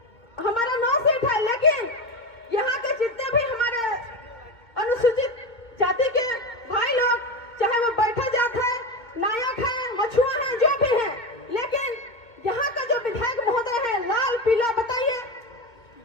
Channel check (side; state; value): right; late; 2.2 ms